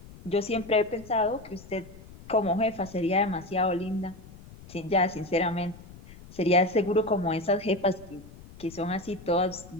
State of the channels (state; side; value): noise; left; rumble, 19 dB below the sound